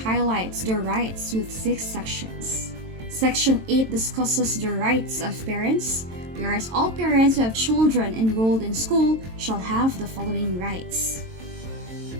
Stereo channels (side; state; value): left; late; 22 ms